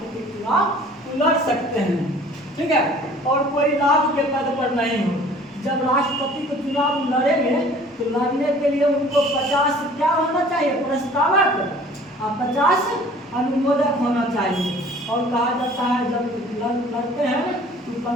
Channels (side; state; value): both; normal; correlation 0.50